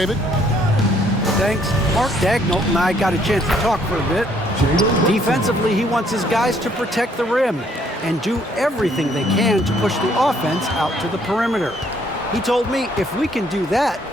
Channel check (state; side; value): normal; both; correlation 0.66